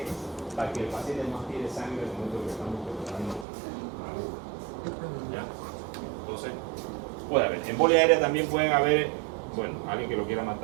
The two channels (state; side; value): drops out; left; at 3.5 s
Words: Para que el paciente no tire sangre en el momento que estamos colocando la aguja. ¿Ya? Entonces, puede haber. Embolia aérea también pueden haber, bueno, alguien que lo quiera